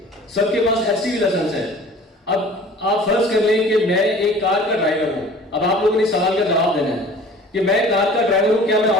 सबके पास एचटीवी लाइसेंस है। अब आप फर्ज कर लें कि मैं एक कार का ड्राइवर हूं। अब आप लोगों ने सवाल का जवाब देना है कि मैं कार का ड्राइवर हूं, क्या मैं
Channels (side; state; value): both; normal; correlation 0.46